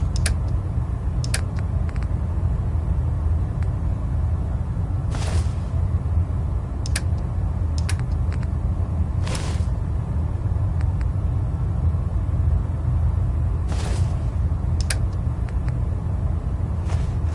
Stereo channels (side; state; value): both; identical; correlation 1.00